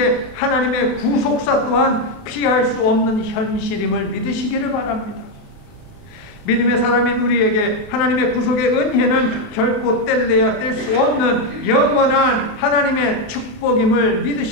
하나님의 구속사 또한 피할 수 없는 현실임을 믿으시기를 바랍니다. 믿음의 사람인 우리에게 하나님의 구속의 은혜는 결코 뗄래야 뗄 수 없는 영원한 하나님의 축복임을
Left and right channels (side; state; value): right; late; 28 ms